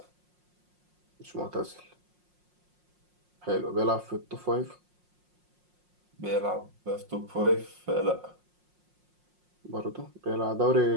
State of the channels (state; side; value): late; left; 5.6 ms